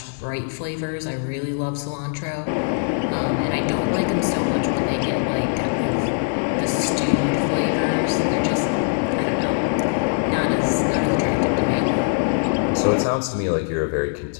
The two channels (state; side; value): silent; right; digital silence